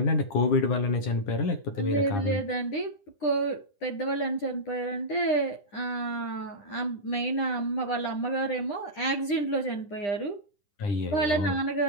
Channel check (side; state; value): right; late; 10 ms